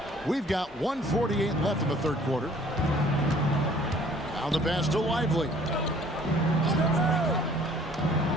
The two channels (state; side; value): normal; both; correlation 0.55